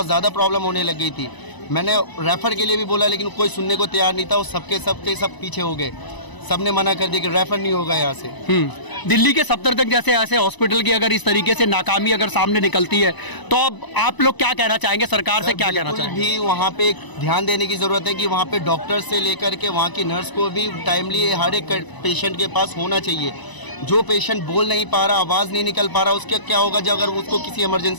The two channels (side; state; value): right; late; 1.0 ms